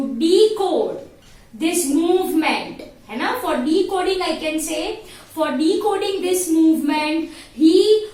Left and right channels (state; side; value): identical; both; correlation 1.00